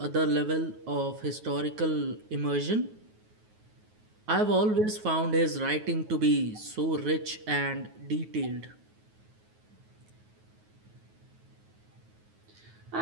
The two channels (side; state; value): left; late; 9.4 ms